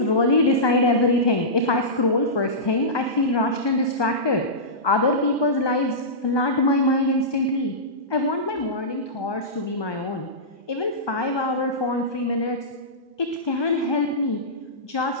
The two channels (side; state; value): right; late; 1.2 ms